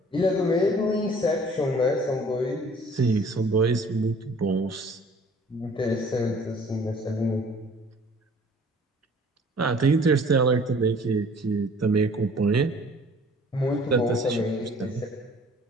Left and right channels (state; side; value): normal; both; correlation 0.52